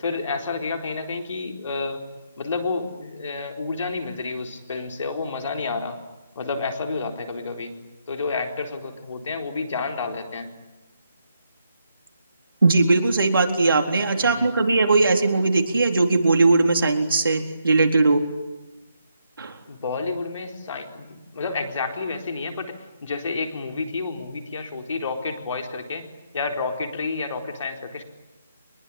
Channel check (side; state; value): both; inverted; correlation -0.78